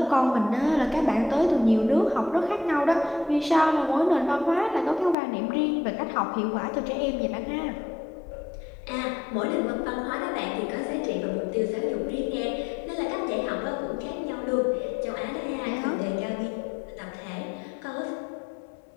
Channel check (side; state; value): right; drops out; at 5.2 s